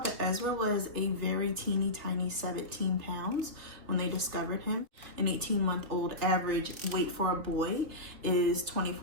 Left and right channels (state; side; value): late; left; 3.1 ms